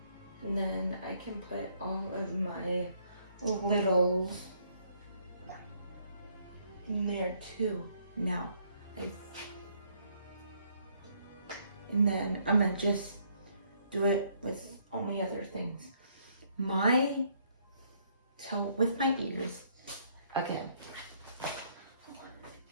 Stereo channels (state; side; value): inverted; both; correlation -0.68